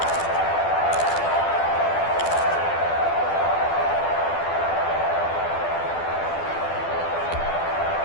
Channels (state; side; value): late; right; 12 ms